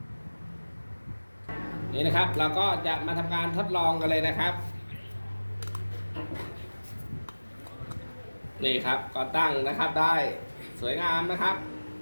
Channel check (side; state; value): both; inverted; correlation -1.00